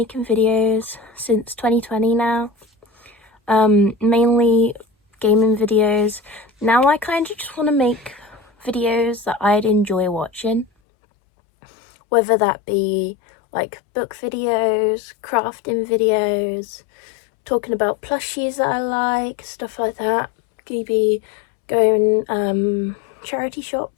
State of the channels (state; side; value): drops out; right; at 10.7 s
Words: videos since 2020 now, mainly gaming videos. Now I kind of just want to make videos that I'd enjoy watching, whether that be like book videos, crafting videos, talking about plushies that I like, stuff like that. Maybe going charity